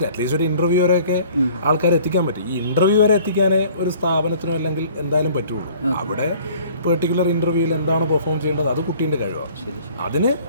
അറ്റ്ലീസ്റ്റ് ഒരു ഇൻ്റർവ്യൂ വരെയൊക്കെ ആൾക്കാരെ എത്തിക്കാൻ പറ്റും. ഈ ഇൻ്റർവ്യൂ വരെ എത്തിക്കാനേ ഒരു സ്ഥാപനത്തിനോ അല്ലെങ്കിൽ എന്തായാലും പറ്റുള്ളൂ. അവിടെ പെർട്ടിക്കുലർ ഇൻ്റർവ്യൂവിൽ എന്താണ് പെർഫോം ചെയ്യേണ്ടത് അത് കുട്ടീൻ്റെ കഴിവാണ്. അതിന്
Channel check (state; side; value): inverted; both; correlation -0.52